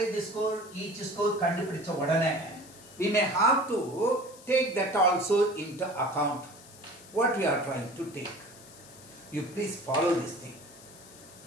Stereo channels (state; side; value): noise; left; hiss, 20 dB below the sound